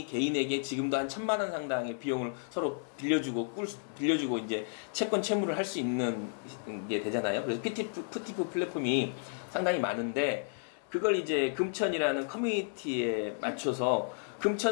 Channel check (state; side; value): silent; right; digital silence